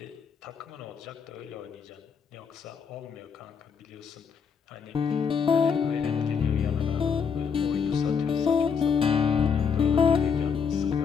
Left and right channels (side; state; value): right; quieter; 6.4 dB